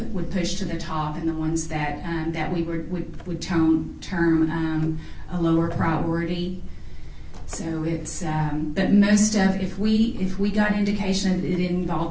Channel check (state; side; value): identical; both; correlation 1.00